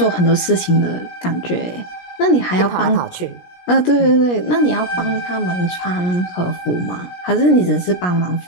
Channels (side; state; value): right; late; 17 ms